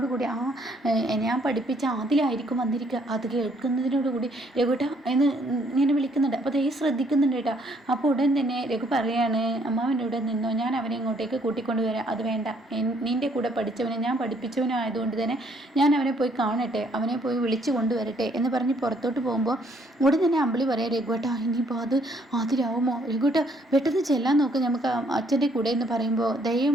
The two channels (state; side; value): normal; both; correlation 0.66